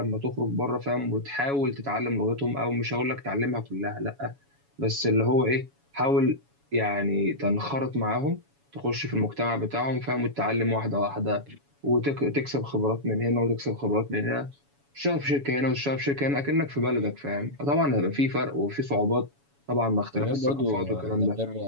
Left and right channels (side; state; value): left; late; 7.1 ms